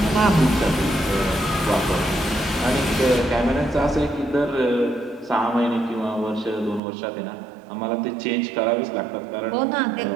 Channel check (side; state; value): left; drops out; at 6.8 s